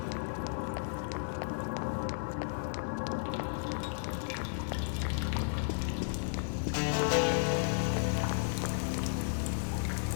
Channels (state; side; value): silent; right; digital silence